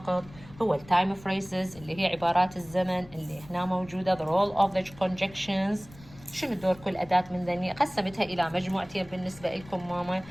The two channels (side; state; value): left; noise; rumble, 21 dB below the sound